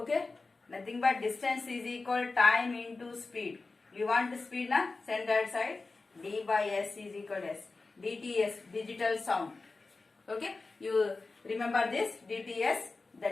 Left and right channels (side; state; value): right; quieter; 3.7 dB